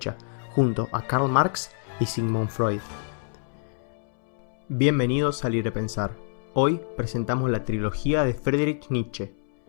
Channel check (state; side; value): silent; right; 61 dB below the other